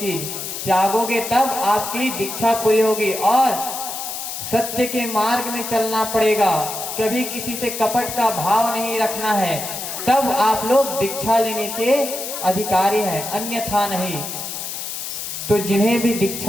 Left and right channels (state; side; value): noise; left; hiss, 6 dB below the sound